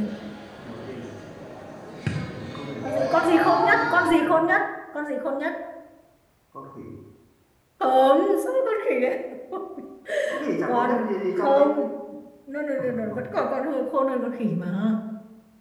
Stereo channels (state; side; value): identical; both; correlation 1.00